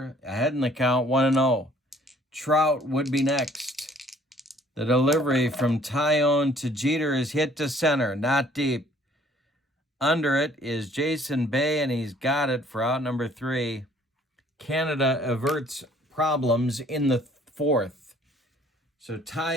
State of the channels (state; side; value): normal; both; correlation 0.58